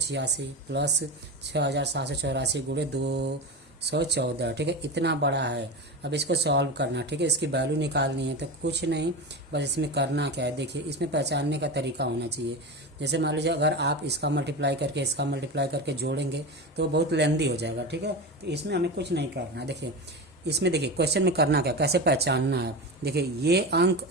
प्लस 6784 गुणे 214। ठीक है, इतना बड़ा है। अब इसको सॉल्व करना, ठीक है, इसकी वैल्यू निकालनी है। तो कुछ नहीं, बस इसमें करना क्या है, देखिए इसमें पहचानने का तरीका होना चाहिए। जैसे मान लीजिए अगर आप इसका मल्टीप्लाई करके जोड़ेंगे तो बहुत लेंदी हो जाएगा। ठीक है, तो इसमें हमें कुछ नहीं करना। देखिए इसमें देखिए क्वेश्चन में करना क्या, कैसे पहचानना है। देखिए ये अंक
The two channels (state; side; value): normal; both; correlation 0.23